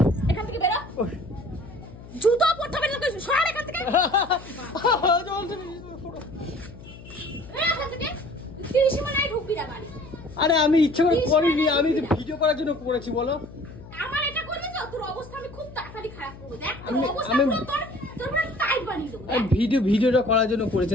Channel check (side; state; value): left; noise; hum, 17 dB below the sound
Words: এখান থেকে, বেরো। জুতো পরতে হবে না, সর এখান থেকে। এখান থেকে 30 মিনিট ঢুকবি না বাড়ি। আরে আমি ইচ্ছা করে করিনি, আমি ভিডিও করার জন্য করেছি বলো। আমার এটা করবি তো তোর অবস্থা আমি খুব তাড়াতাড়ি খারাপ করবো। দেখ তোর আমি- অবস্থা আমি- পুরো তোর পুরো টাইট বানিয়ে দেবো। আমি ভিডিওটা করার জন্য